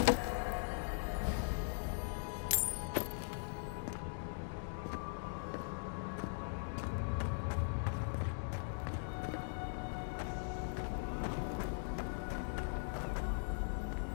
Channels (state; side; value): silent; right; digital silence